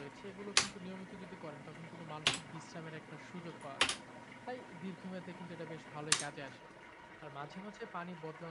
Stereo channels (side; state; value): both; identical; correlation 1.00